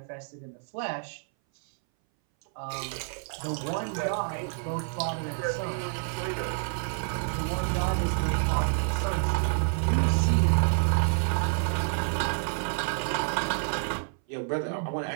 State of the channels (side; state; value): left; silent; 59 dB below the other